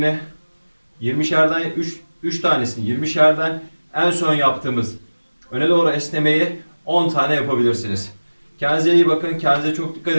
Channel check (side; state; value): both; inverted; correlation -1.00